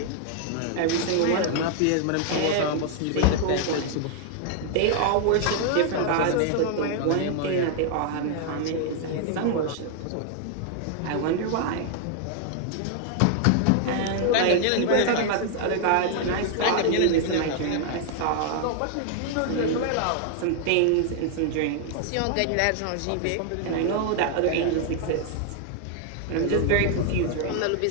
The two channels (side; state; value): both; different; correlation 0.00